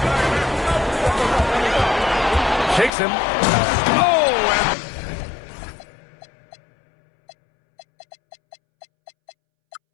Shakes him. Oh,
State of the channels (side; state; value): right; drops out; at 2.9 s